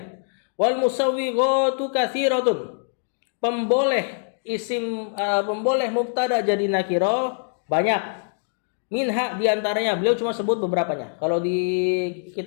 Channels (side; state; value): right; silent; digital silence